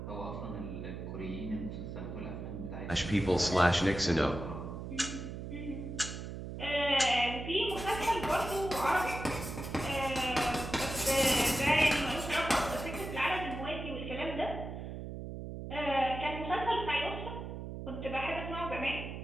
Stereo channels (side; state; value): right; noise; hum, 7 dB below the sound